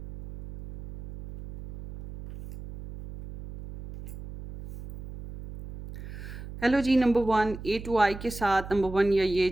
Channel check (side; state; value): right; noise; hum, 13 dB below the sound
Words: Hello जी, नंबर 1 ए टू आई के साथ नंबर 1 या ये